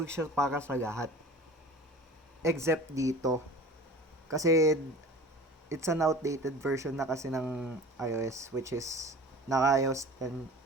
siya para sa lahat. Except dito. Kasi, it's an outdated version na kasi ng iOS, which is naka-iOS 10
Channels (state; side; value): normal; both; correlation 0.40